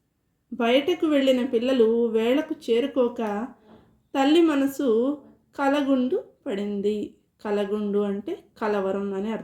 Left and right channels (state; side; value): identical; both; correlation 1.00